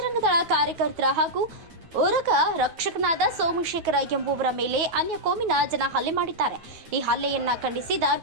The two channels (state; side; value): late; left; 9.2 ms